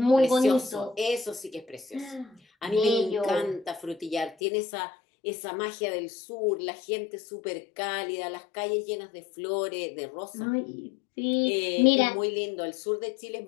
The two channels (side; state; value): right; drops out; at 4.4 s